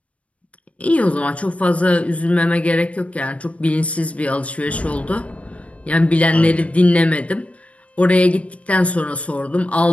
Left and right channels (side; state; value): right; late; 0.064 ms